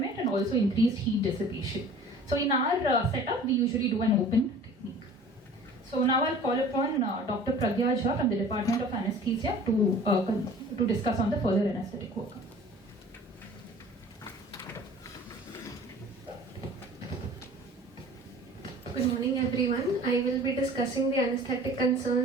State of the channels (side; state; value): both; normal; correlation 0.46